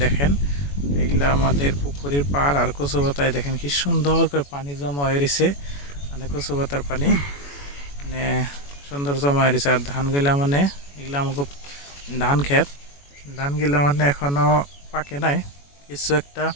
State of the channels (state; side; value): late; right; 21 ms